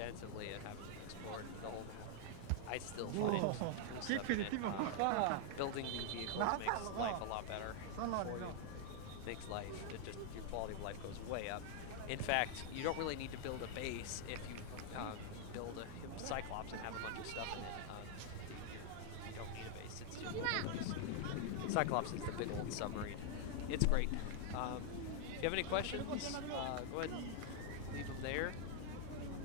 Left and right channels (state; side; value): different; both; correlation 0.00